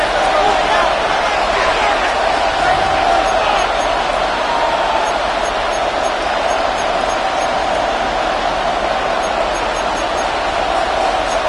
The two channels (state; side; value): identical; both; correlation 1.00